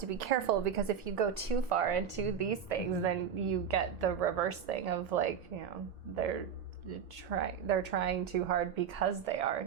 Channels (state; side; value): quieter; left; 7.6 dB